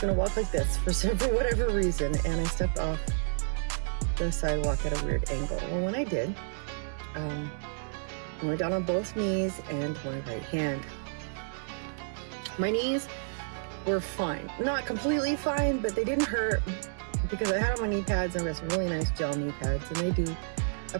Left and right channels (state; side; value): silent; left; 58 dB below the other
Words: to walk like this for whatever reason, and I stepped off the sidewalk at a weird angle. Well, when I did, I went down on both knees and my right hand. My knees were fine. Not completely fine, but they didn't hurt because I had on my knee pads, and I got some really nice gel knee pads, and they do